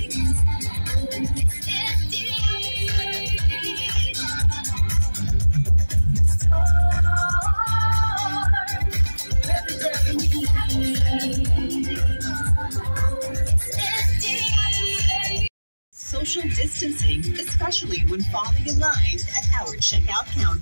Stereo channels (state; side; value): inverted; both; correlation -1.00